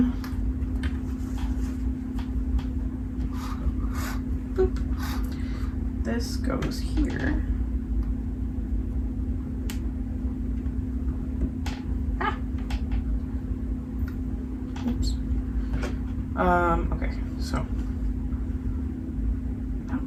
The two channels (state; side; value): identical; both; correlation 1.00